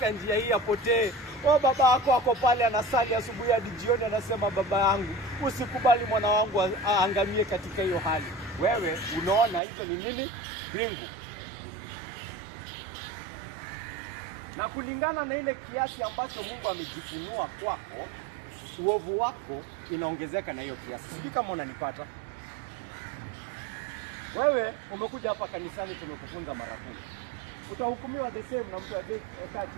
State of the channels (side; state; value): left; drops out; at 9.6 s